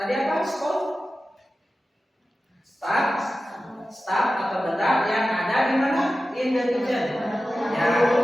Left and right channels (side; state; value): both; normal; correlation 0.94